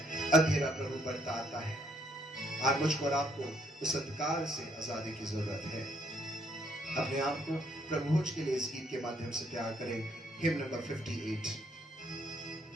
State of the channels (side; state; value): both; normal; correlation 0.69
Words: अंधेरा प्रभु बढ़ता आता है। आज मुझको और आपको उस अंधकार से आजादी की जरूरत है। अपने आप को प्रभु भोज के लिए इस गीत के माध्यम से तैयार करें। Him number 58।